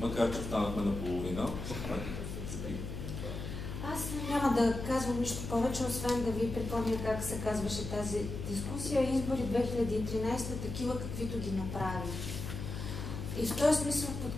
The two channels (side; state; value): left; noise; hum, 6 dB below the sound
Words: че станахме наполовина. Аз няма да казвам нищо повече, освен да ви припомня как се казваше тази дискусия. Избори 2013, такива каквито ги направи. И в този смисъл